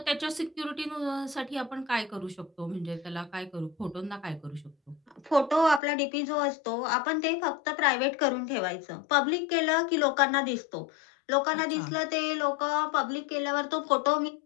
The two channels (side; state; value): right; drops out; at 5.8 s